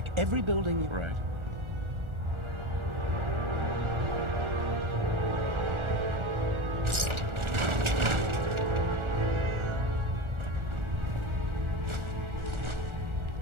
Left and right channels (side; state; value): left; late; 1.4 ms